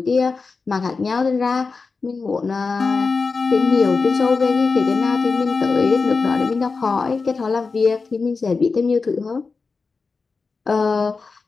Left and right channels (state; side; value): quieter; right; 4.4 dB